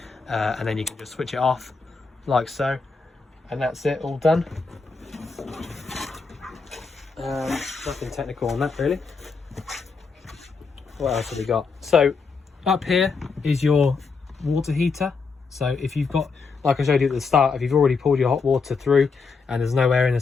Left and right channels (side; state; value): right; quieter; 4.7 dB